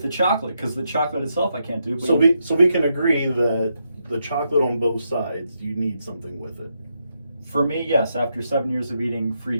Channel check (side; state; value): both; inverted; correlation -0.81